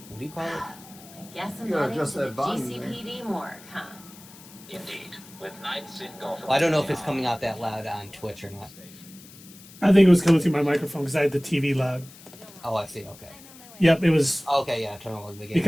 what do you call it? I guess I'm You gotta heading adjust to the that volume there. GCPD morgue, huh? Indeed, with Knights in Gotham. Well, I don't know if it's coming out that loud on Twitch or not. I think it was coming through my microphone because I had the TV loud. Oh, I see. Okay. Yep, it was Okay, yeah. Turn on the game.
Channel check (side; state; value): left; noise; hiss, 20 dB below the sound